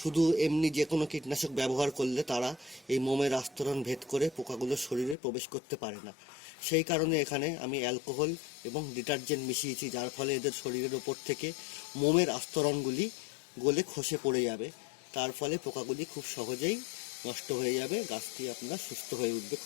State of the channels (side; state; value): right; drops out; at 5.2 s